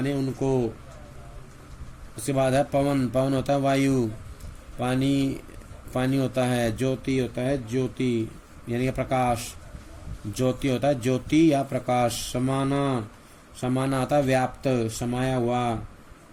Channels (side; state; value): both; identical; correlation 1.00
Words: उनको। उसके बाद है पवन, पवन होता है वायु, पानी, पानी होता है, ज्योति होता है ज्योति यानी प्रकाश, ज्योति होता है ज्योति या प्रकाश। समाना, समाना आता है व्याप्त, समाया हुआ।